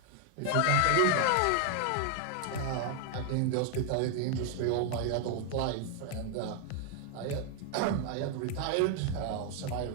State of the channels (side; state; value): both; different; correlation 0.00